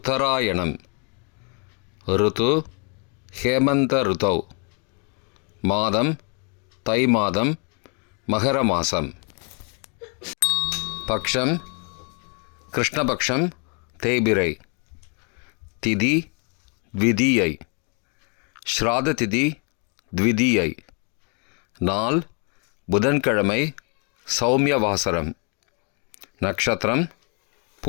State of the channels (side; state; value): right; quieter; 37.6 dB